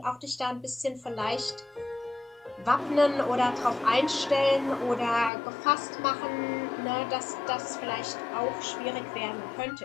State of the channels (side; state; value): right; drops out; at 5.3 s